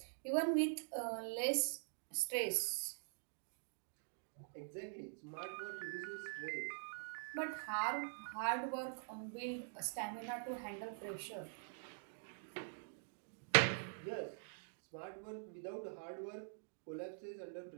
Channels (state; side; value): silent; left; digital silence